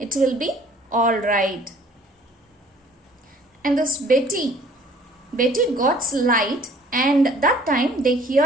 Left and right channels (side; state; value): both; normal; correlation 0.55